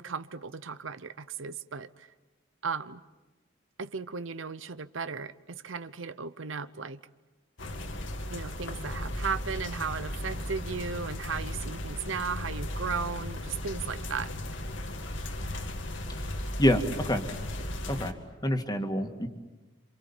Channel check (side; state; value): both; normal; correlation 0.56